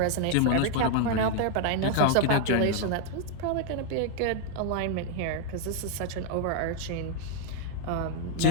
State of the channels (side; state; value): both; different; correlation 0.00